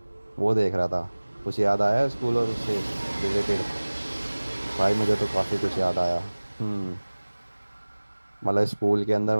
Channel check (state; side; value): inverted; both; correlation -1.00